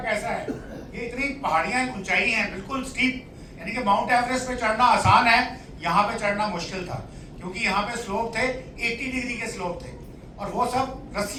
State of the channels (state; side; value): identical; both; correlation 1.00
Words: है, ये इतनी पहाड़ियां ऊंचाई हैं बिल्कुल स्टीप, यानी कि माउंट एवरेस्ट पे चढ़ना आसान है, यहाँ पे चढ़ना मुश्किल था क्योंकि यहाँ पे स्लोप थे 80 डिग्री के स्लोप थे और वो सब